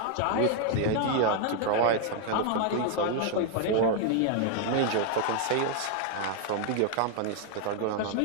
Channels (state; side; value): different; both; correlation 0.00